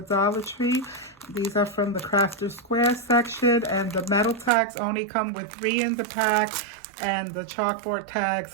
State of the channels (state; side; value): drops out; left; at 4.5 s